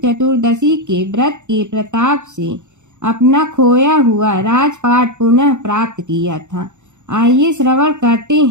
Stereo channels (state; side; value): late; left; 0.84 ms